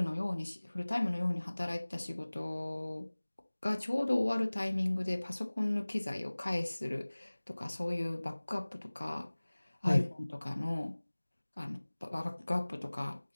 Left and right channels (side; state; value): both; inverted; correlation -1.00